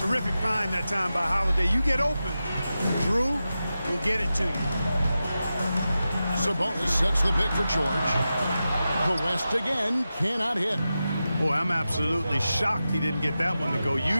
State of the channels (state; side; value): inverted; both; correlation -0.92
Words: find that time by Holiday. You get open, Drew will get it to you. Sabonis sets the pick for George. The West again cannot hit. Boy, I'm absolutely shocked he didn't get that one to go.